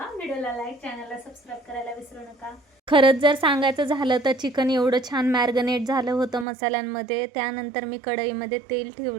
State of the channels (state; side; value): drops out; left; at 6.5 s